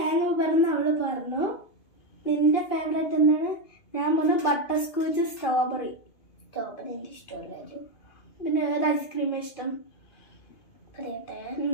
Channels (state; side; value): late; right; 2.6 ms